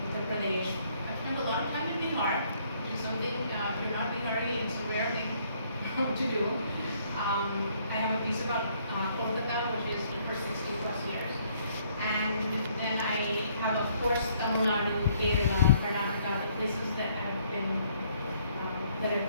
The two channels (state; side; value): inverted; both; correlation -0.66